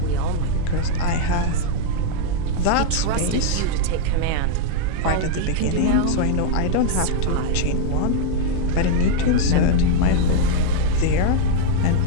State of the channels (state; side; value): different; both; correlation 0.00